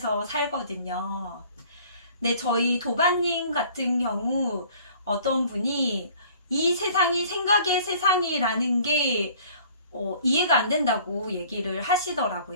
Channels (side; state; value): both; inverted; correlation -0.52